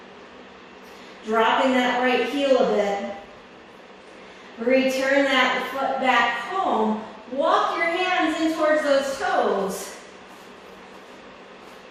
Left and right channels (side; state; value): both; identical; correlation 1.00